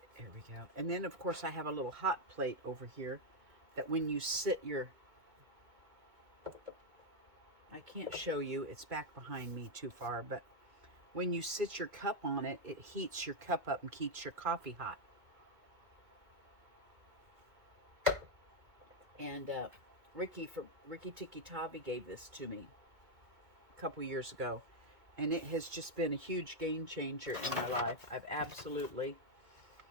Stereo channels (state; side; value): late; left; 2.2 ms